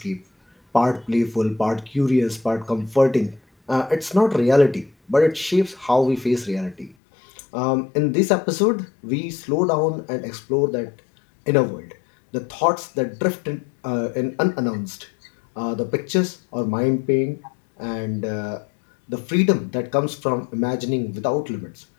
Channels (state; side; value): drops out; right; at 7.0 s